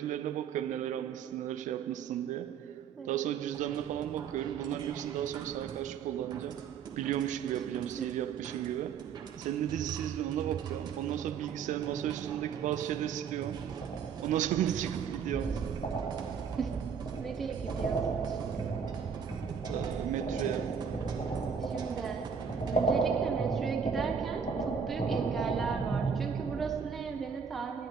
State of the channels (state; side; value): quieter; left; 6.8 dB